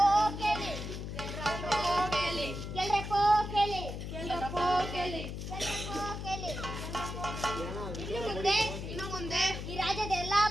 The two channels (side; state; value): left; noise; hum, 6 dB below the sound